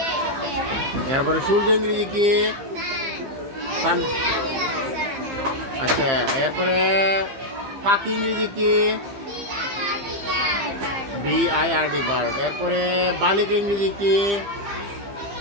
এরপরে সূর্য ইংরেজি কি? সান। আচ্ছা, এরপরে পাখি ইংরেজি কি? BIRD bird. এরপরে বালিকা ইংরেজি কি?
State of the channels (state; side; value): late; left; 15 ms